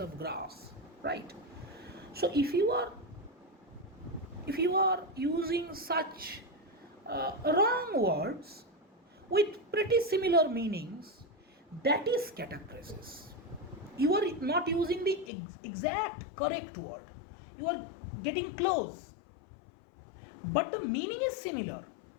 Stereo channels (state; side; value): drops out; right; at 15.3 s